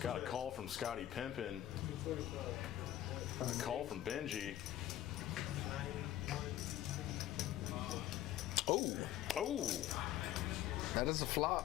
a call from Scottie Pippen. A call from Benji. Oh. Oh, That is a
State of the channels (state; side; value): quieter; right; 13.0 dB